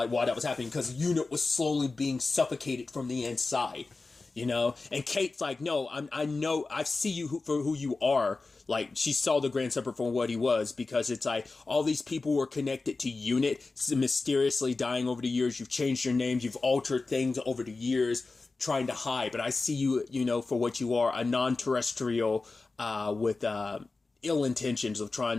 why that was happening, because UNIT was slowly being suffocated from the inside, you know? And Kate's like, no, I know, I see you for who you are. Like, she saw the Grand Serpent for what he was, because it's like, all these people were connected to UNIT, mysteriously dying over the years. You've changed your names, you've altered things over the years, trying to hide, but I see you, you know, for what you are, a non-terrestrial with ill intentions of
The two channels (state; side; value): quieter; right; 3.7 dB